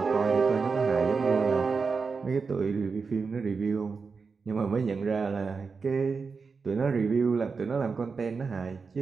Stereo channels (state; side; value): quieter; left; 4.9 dB